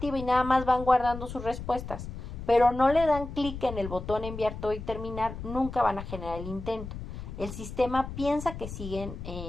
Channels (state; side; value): noise; left; rumble, 9 dB below the sound